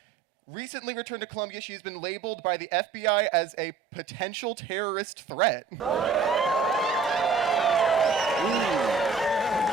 Recently returned to Columbia, she has been labeled by the FBI as a potential terrorist threat.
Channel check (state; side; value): quieter; left; 5.0 dB